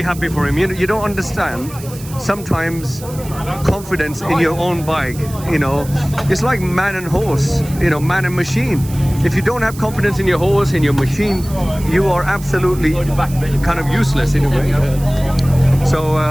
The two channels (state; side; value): noise; right; hiss, 17 dB below the sound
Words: happy for him. You don't understand. Sometimes confidence in your own bike, you know, it's like man and horse, you know, man and machine. If you don't have confidence in your horse, in your machine, you are absolutely kind of useless in a way. So,